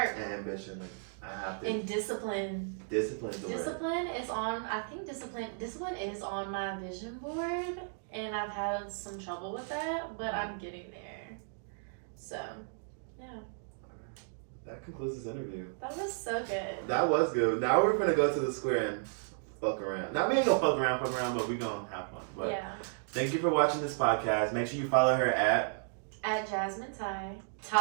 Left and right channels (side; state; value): left; silent; digital silence